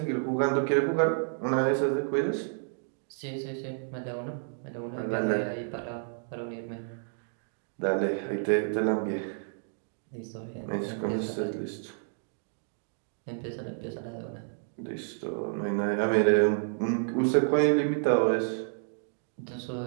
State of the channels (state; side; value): silent; left; digital silence